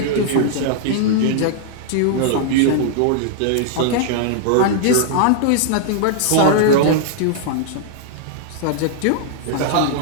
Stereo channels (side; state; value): both; different; correlation -0.01